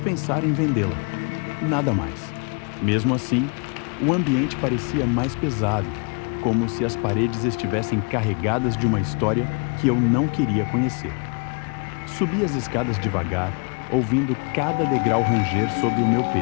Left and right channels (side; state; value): right; quieter; 36.1 dB